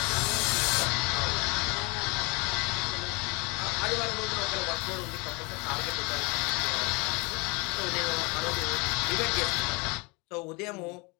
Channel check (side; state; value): right; quieter; 28.6 dB